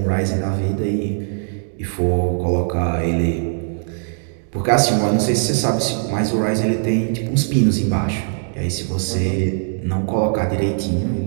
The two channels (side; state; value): left; silent; digital silence